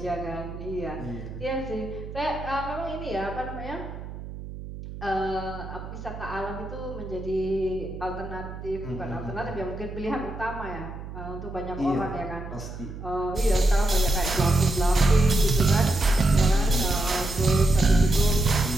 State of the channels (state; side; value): noise; right; hum, 11 dB below the sound